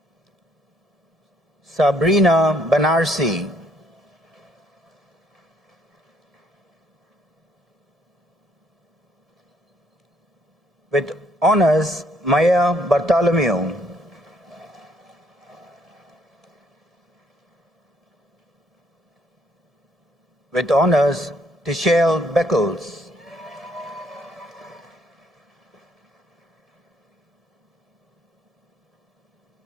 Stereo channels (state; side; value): normal; both; correlation 0.68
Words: Sabrina Banarsi. With honors, Maya Bartholomew. With honors, Tichelle Beckles.